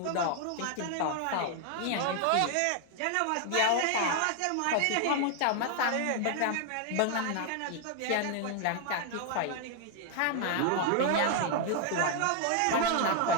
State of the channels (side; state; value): both; different; correlation 0.00